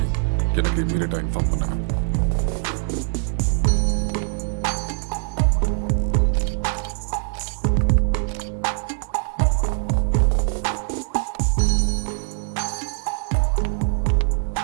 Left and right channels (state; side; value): silent; left; 64 dB below the other